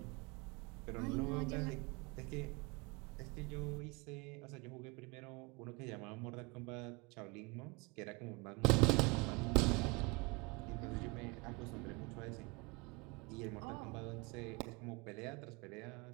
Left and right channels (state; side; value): quieter; left; 27.0 dB